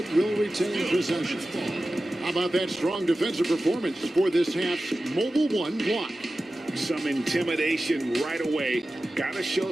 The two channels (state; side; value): normal; both; correlation 0.95